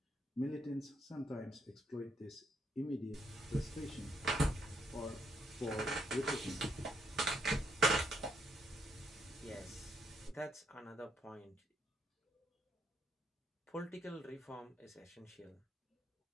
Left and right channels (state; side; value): normal; both; correlation 0.74